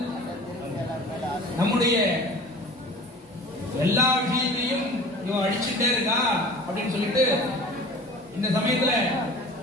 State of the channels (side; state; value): both; normal; correlation 0.42